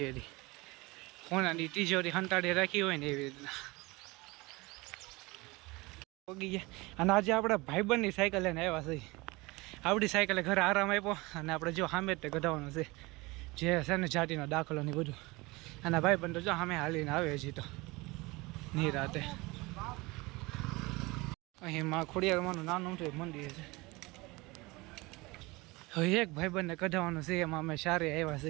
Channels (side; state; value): left; quieter; 23.3 dB